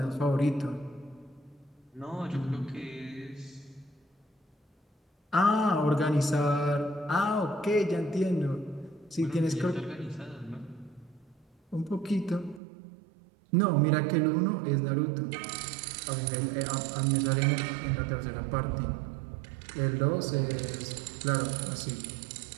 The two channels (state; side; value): drops out; left; at 12.6 s